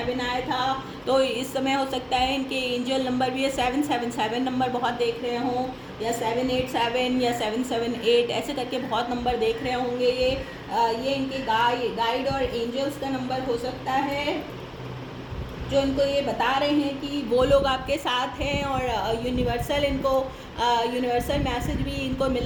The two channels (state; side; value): identical; both; correlation 1.00